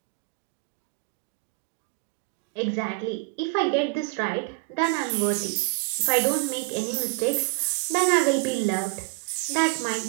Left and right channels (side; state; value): left; quieter; 27.1 dB